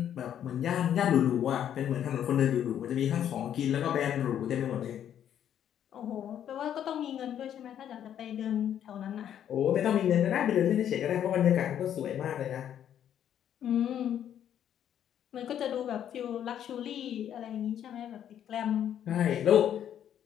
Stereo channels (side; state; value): right; quieter; 10.0 dB